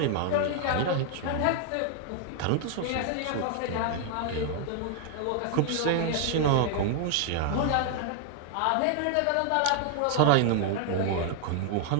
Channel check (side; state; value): both; different; correlation 0.00